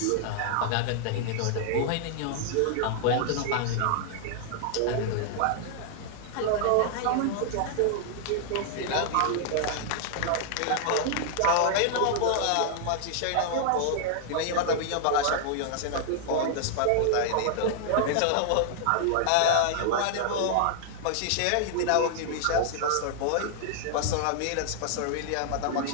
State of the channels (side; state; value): both; different; correlation -0.01